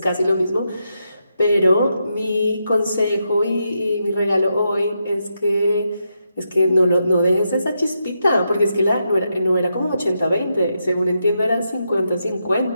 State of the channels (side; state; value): both; inverted; correlation -0.83